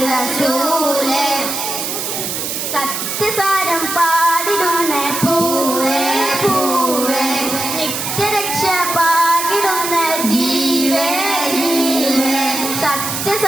റസൂല് സത്യസാരം പാടിടുന്ന പൂവേ പൂവേ നിത്യരക്ഷ പാടിടുന്ന ജീവേ ജീവേ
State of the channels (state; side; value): noise; right; hiss, 3 dB below the sound